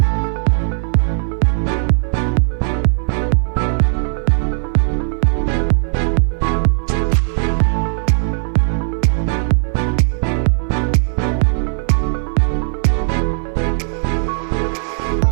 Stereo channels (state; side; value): silent; left; 57 dB below the other